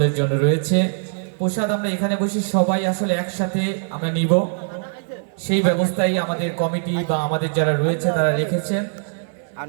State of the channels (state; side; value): silent; left; digital silence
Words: জন্য রয়েছে। প্রসাদ আমরা এখানে বসে সবাই আসলে একসাথে আমরা নিব, সেই ব্যবস্থাই আমাদের কমিটি বা আমাদের যারা রয়েছে তারা রেখেছেন। আর